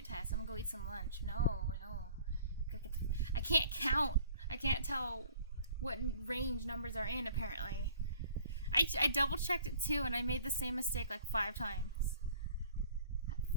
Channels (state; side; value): inverted; both; correlation -0.52